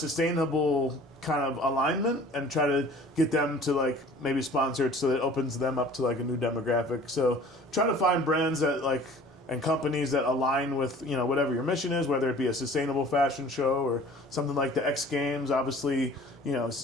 kind of alignment and try to get them to like maybe sponsor it so that it opens them up to like a new demographic. So try to find brands that like and companies that align with whatever your mission is, whether it be a sustainable fashion show or something like the X Games. Obviously,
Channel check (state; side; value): normal; both; correlation 0.48